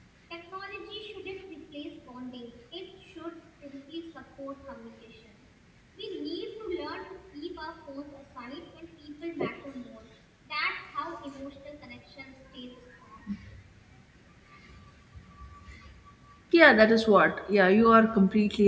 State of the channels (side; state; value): both; identical; correlation 1.00